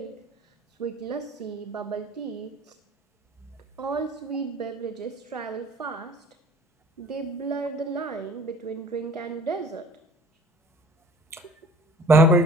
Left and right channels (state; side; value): normal; both; correlation 0.48